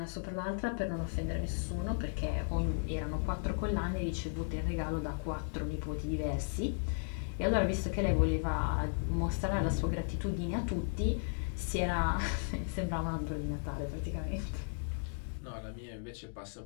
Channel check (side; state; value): right; silent; digital silence